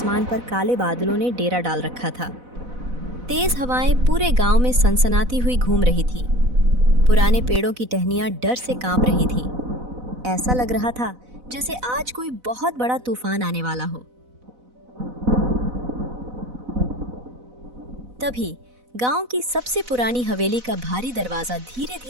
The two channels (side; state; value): left; late; 4.0 ms